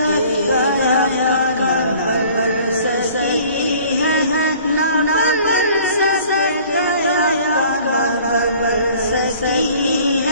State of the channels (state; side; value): inverted; both; correlation -0.51